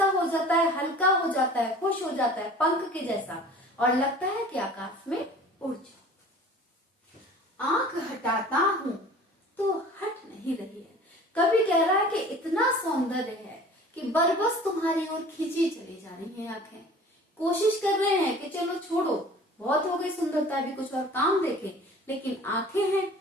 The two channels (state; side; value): normal; both; correlation 0.45